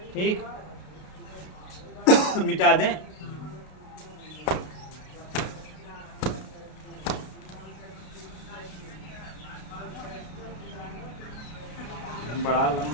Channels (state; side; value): late; right; 33 ms